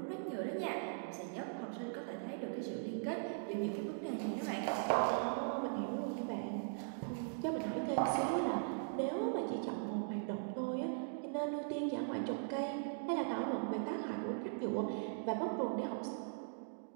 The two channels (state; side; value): silent; left; digital silence